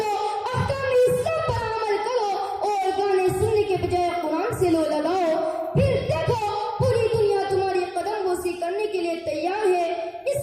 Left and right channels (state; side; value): identical; both; correlation 1.00